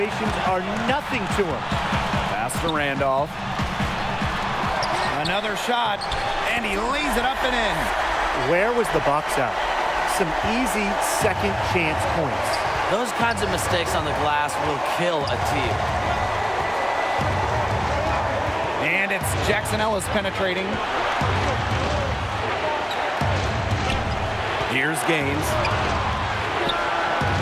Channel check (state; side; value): identical; both; correlation 1.00